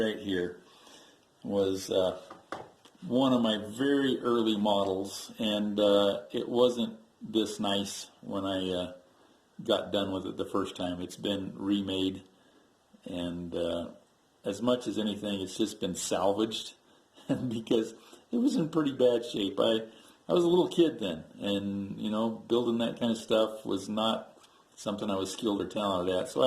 here was one of my very early models, and it wasn't this nice when I got done with it the first time. It's been remade, and as much as anything, it's just been salvaged because it was in pretty bad shape. I was a little kid then, and building that kind of stuff was not something I was skilled or talented at, so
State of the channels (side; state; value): both; identical; correlation 1.00